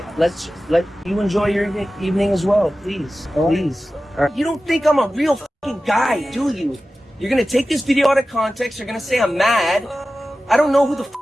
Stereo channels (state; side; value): normal; both; correlation 0.95